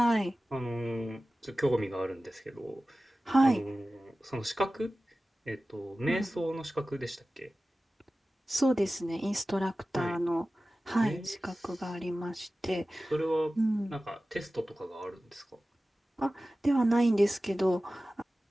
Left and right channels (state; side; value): normal; both; correlation 0.96